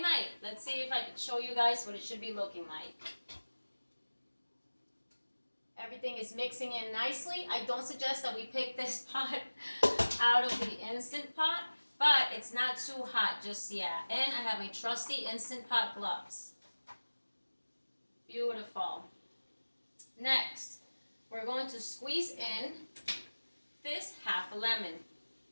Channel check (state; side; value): inverted; both; correlation -1.00